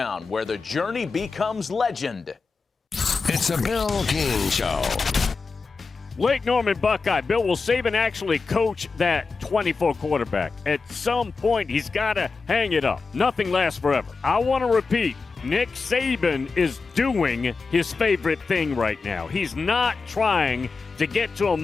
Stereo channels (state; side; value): quieter; right; 4.5 dB